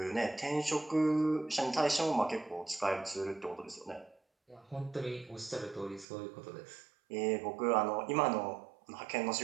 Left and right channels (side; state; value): left; drops out; at 6.1 s